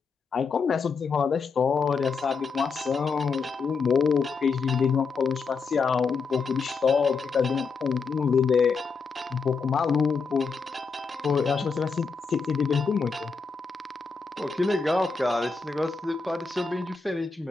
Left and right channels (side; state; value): right; quieter; 5.0 dB